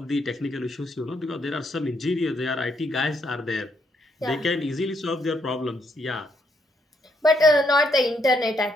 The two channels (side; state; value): both; normal; correlation 0.74